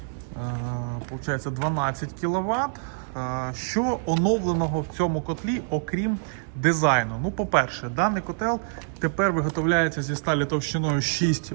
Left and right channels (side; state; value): left; silent; 61 dB below the other